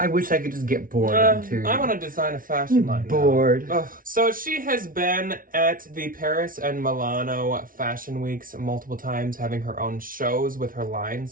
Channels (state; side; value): late; left; 0.40 ms